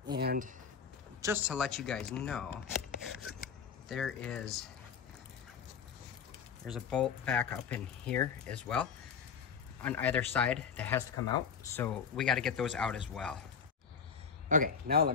And just to let you guys know, there's a bolt back up in here as well on either side that has to come out. So we got to get those out as well. Okay, now let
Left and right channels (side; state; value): right; quieter; 6.7 dB